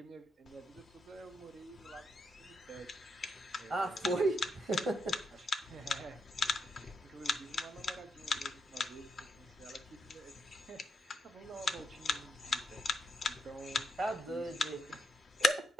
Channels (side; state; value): both; normal; correlation 0.82